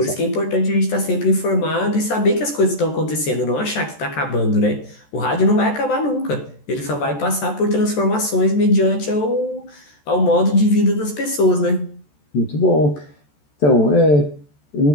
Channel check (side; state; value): right; late; 14 ms